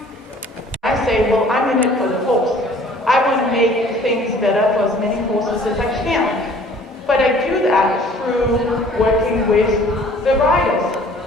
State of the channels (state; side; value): normal; both; correlation 0.52